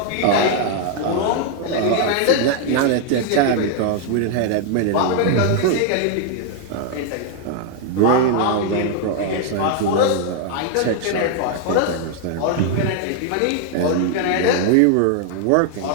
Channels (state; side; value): different; both; correlation 0.00